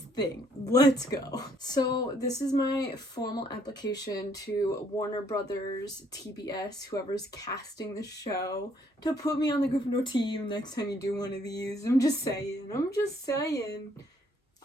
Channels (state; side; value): normal; both; correlation 0.66